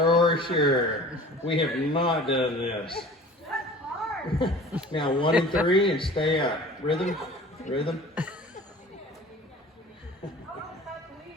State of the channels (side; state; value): both; normal; correlation 0.43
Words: sure. We have not done this. Now 1 and 3 and stay up. Rhythm, rhythm.